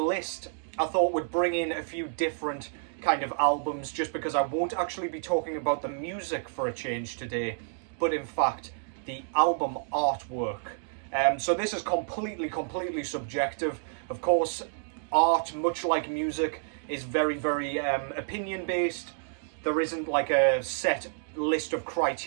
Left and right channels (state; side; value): silent; left; digital silence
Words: I thought would bring in a few different kind of albums, just because I won't actually be talking about the music for a change today, but in fact the album artwork. So this is completely subjective. Of course, art, much like music, is very opinion based. There isn't like a set list of